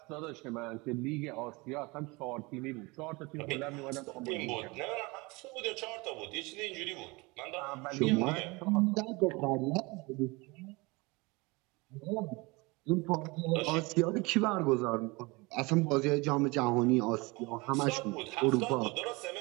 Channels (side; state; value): left; quieter; 25.3 dB